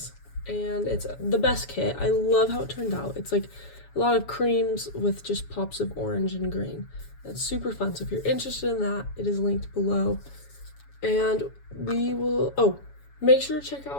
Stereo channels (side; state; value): right; late; 7.1 ms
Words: and it's the best kit. I love how it turned out. It's like a lot of creams with just pops of orange and green. It's super fun. So if you're interested in that, it is linked below. And we will, make sure to check